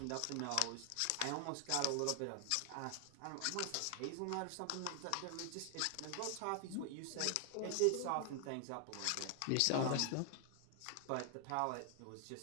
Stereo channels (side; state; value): both; different; correlation 0.00